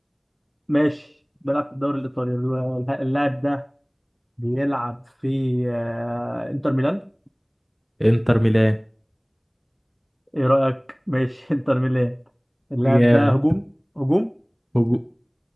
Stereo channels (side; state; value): both; identical; correlation 1.00